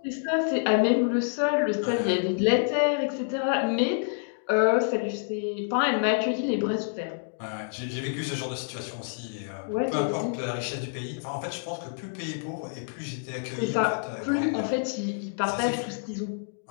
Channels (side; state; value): right; silent; digital silence